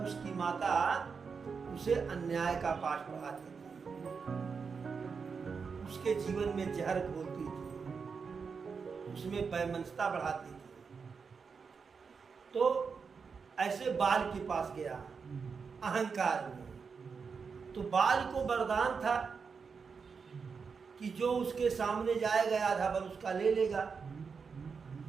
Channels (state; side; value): quieter; left; 5.5 dB